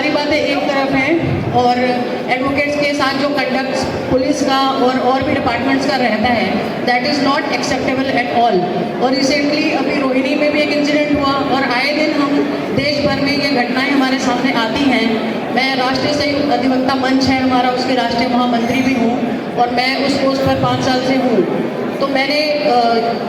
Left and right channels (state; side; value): identical; both; correlation 1.00